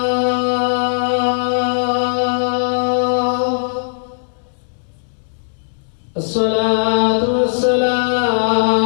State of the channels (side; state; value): right; silent; digital silence